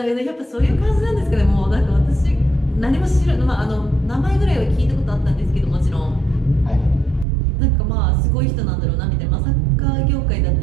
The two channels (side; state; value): left; drops out; at 7.2 s